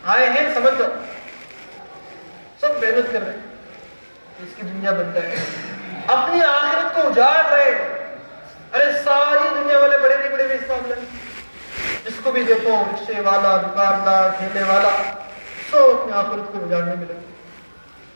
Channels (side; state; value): both; inverted; correlation -1.00